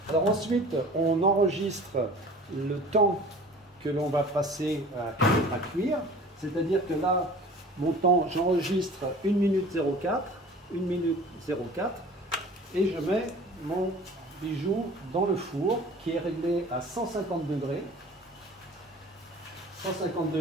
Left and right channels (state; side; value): normal; both; correlation 0.44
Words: Alors ensuite, on enregistre le temps que l'on va passer à cuire. C'est-à-dire que là, mon temps, j'enregistre 1 minute 04, 1 minute 04, et je mets mon bijou dans le four qui est réglé à 150 degrés. 150